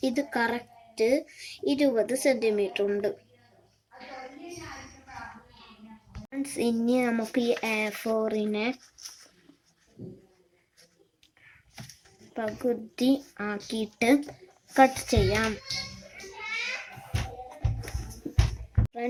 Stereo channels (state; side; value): identical; both; correlation 1.00